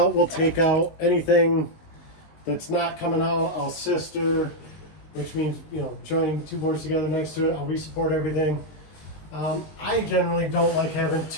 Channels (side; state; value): right; late; 19 ms